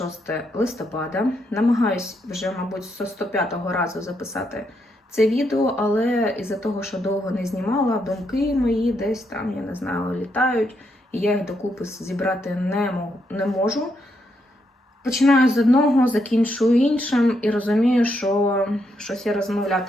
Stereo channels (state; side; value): normal; both; correlation 0.79